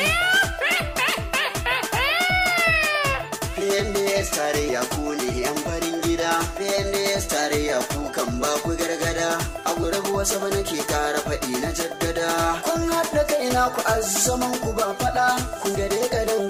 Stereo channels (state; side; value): identical; both; correlation 1.00